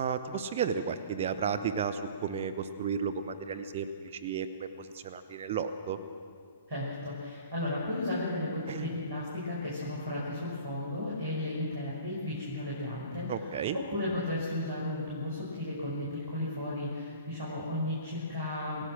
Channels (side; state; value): both; inverted; correlation -0.43